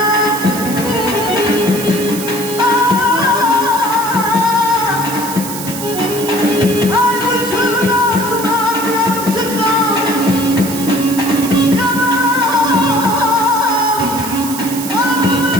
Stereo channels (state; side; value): noise; right; hiss, 8 dB below the sound